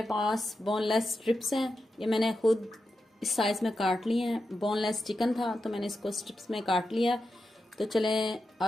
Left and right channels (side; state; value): both; normal; correlation 0.89